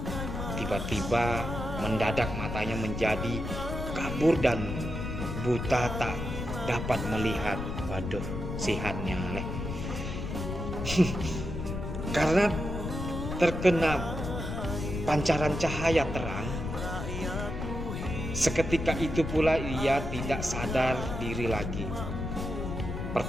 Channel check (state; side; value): noise; left; rumble, 5 dB below the sound